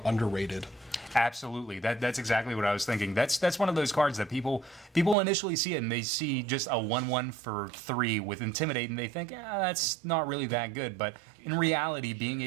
underrated. Absolutely, that's exactly what I was thinking. That's one of those cards that people initially see it and they see just a 1/1 for 3 with Intimidate and they think, that's not really that good. But in reality, being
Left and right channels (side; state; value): left; drops out; at 5.2 s